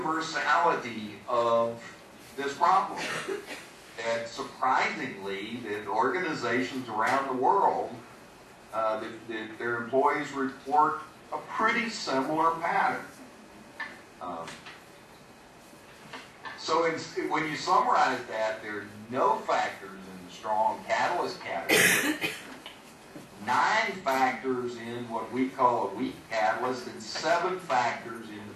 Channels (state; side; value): identical; both; correlation 1.00